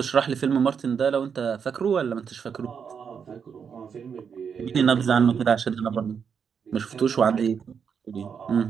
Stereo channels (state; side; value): quieter; left; 6.8 dB